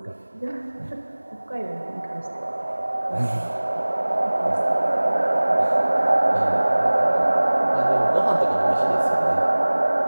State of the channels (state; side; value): inverted; both; correlation -1.00